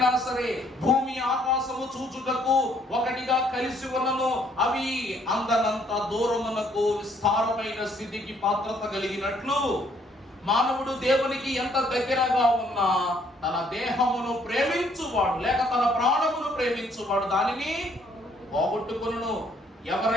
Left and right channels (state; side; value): normal; both; correlation 0.66